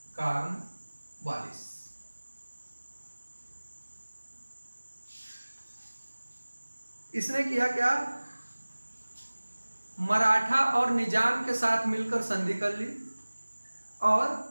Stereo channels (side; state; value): both; inverted; correlation -1.00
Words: Cornwallis. इसने किया क्या? मराठा और निजाम के साथ मिलकर संधि कर ली और